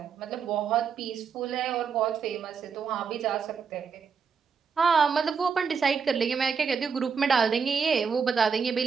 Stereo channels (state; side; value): quieter; left; 6.1 dB